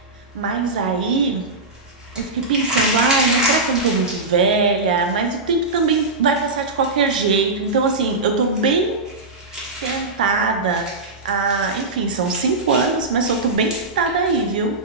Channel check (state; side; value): quieter; left; 3.3 dB